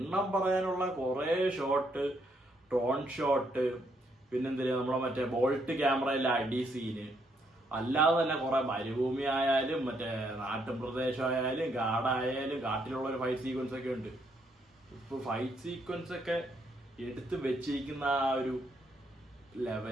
പറയാനുള്ള കുറെ ഷോട്ട്, ടോൺ ഷോട്ട്, പിന്നെന്തിനാ നമ്മളെ മറ്റേ ബോൾട്ട് ക്യാമറയിലെ അടി സീന്, അല്ലാതെ തന്നെ കുറെ മരുഭൂമി ആയാലും മറ്റേ നാട്ടും പ്രദേശമായാലും കാടായാലും കാട്ടിലുള്ള ഒരു ഫൈറ്റ് സീക്വൻസ് ഒക്കെ ഉണ്ട്. ഇപ്പൊ ഫൈറ്റ് സീക്വൻസ് ഒക്കെ എടുത്ത് വെച്ചിരിക്കുന്ന ആ ഒരു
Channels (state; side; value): normal; both; correlation 0.73